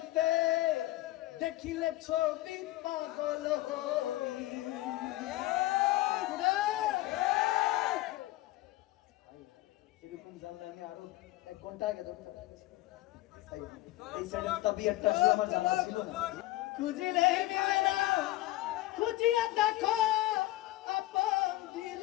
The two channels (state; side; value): quieter; right; 17.3 dB